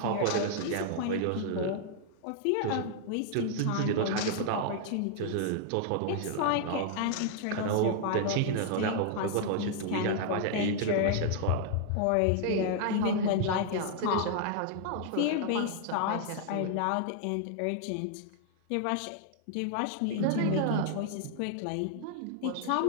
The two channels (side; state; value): both; different; correlation 0.00